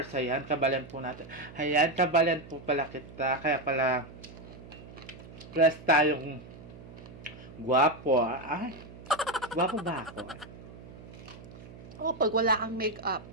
Ayan, kabalen po natin. Ayan, kabalen po pala kita. Kaya pala press tayong guwapo. Ay, guwapo ba ako? Oh, pag wala kang makeup.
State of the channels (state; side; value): noise; right; hum, 17 dB below the sound